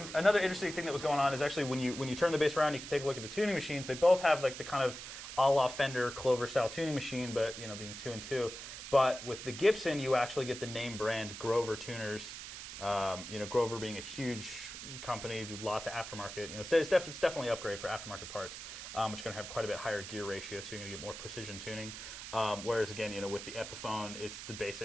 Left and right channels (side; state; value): right; noise; hiss, 10 dB below the sound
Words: another interesting thing that was going on is actually when you turn the bass around, you can take a look at the tuning machines. They both have like the kind of a la Fender Clover style tuning machine, but being 2 and 2. But with the Gibson, you actually get the name brand Grover tuners. Grover being a huge company, do lots of aftermarket. It's definitely an upgrade for aftermarket parts, which are going to have quite a bit higher gear ratio, so you're going to get more precision tuning. Whereas again, with the Epiphone, it's the